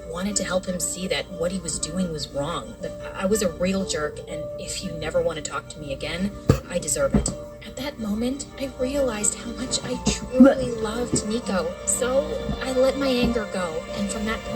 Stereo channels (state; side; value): identical; both; correlation 1.00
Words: wanted to help him see that what he was doing was wrong. That I was a real jerk, and if you never want to talk to me again, I deserve it. At that moment, I realized how much I truly loved Nico. So I let my anger go, and from that